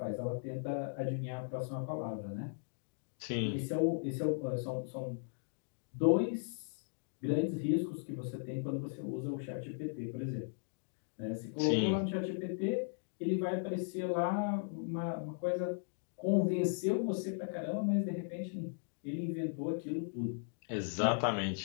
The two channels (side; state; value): right; silent; digital silence